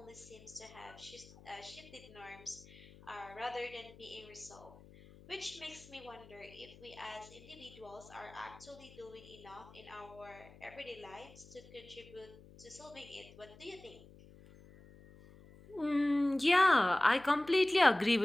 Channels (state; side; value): noise; left; hum, 21 dB below the sound